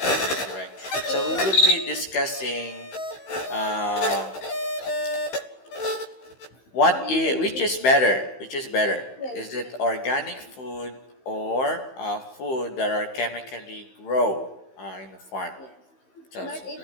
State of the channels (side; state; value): right; late; 15 ms